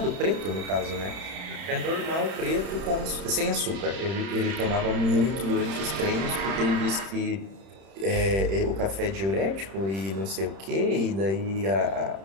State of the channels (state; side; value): late; left; 31 ms